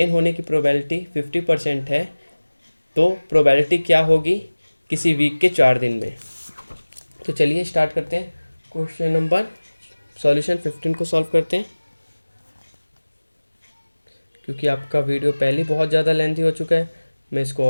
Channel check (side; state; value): both; inverted; correlation -1.00